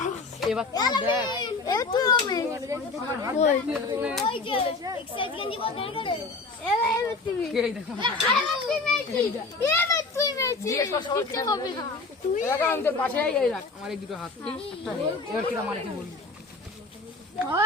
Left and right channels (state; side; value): quieter; right; 3.7 dB